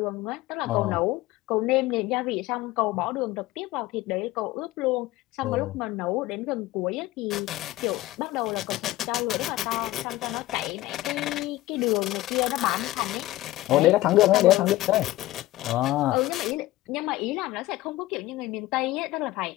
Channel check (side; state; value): right; quieter; 17.1 dB